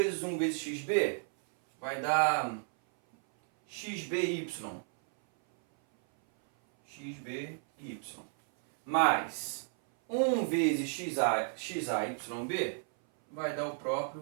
1 vezes xb vai dar xby. Xby mais 1 vezes xayb vai dar o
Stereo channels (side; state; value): left; silent; 56 dB below the other